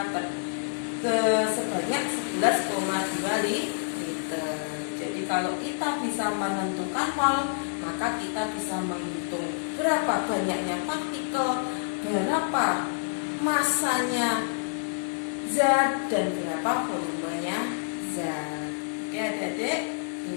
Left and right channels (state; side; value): silent; right; digital silence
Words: sebanyak 11,2 liter. Jadi kalau kita bisa menentukan mol, maka kita bisa menghitung berapa banyaknya partikel, berapa masanya zat, dan berapa volumenya zat. Oke adik-adik,